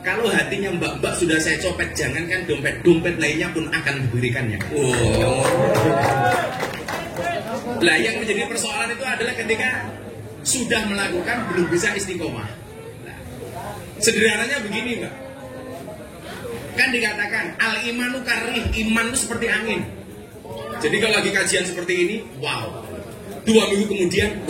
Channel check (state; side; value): identical; both; correlation 1.00